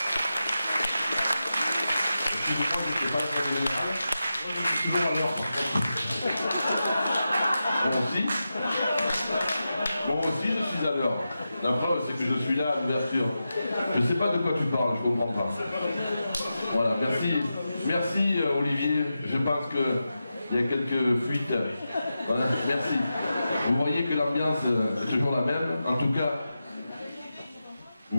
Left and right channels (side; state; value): both; inverted; correlation -0.91